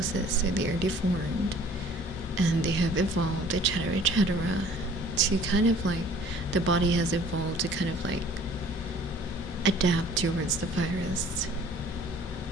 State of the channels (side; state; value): both; normal; correlation 0.52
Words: So they are deformed and they have evolved, etc., etc., to kind of like, the body has evolved to kind of like adapt towards the virus,